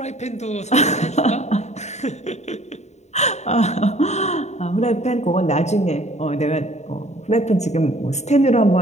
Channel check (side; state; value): right; late; 0.33 ms